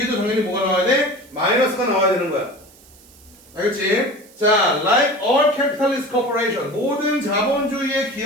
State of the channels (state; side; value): noise; right; hiss, 25 dB below the sound